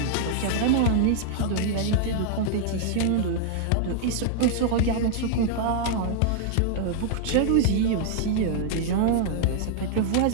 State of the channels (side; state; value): both; different; correlation -0.01